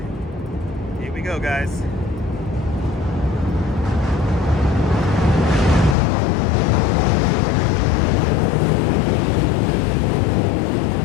Here we go, guys.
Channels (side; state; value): right; drops out; at 6.0 s